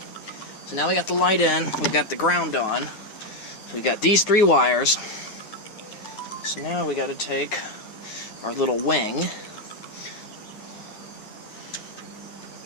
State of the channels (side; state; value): right; late; 9.5 ms